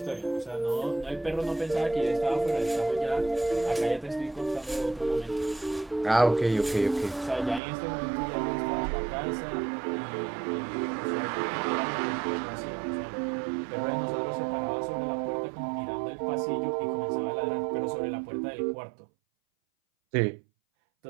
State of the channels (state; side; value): drops out; left; at 7.6 s